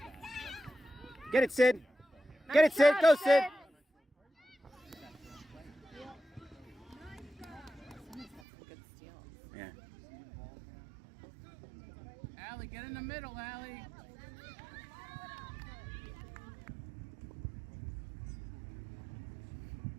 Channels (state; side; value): drops out; left; at 8.4 s